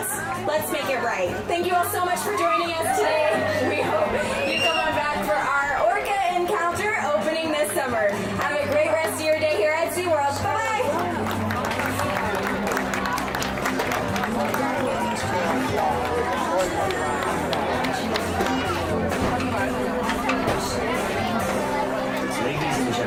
Let's make it right. Thank you all so much for joining us today. We hope you come on back for our Orca encounter opening this summer. Have a great rest of your day here at Seaworld. Bye-bye. Ladies and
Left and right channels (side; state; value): both; identical; correlation 1.00